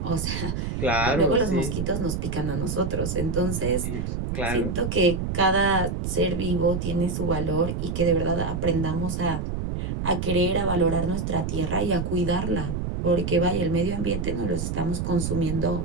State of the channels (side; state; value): right; noise; rumble, 3 dB below the sound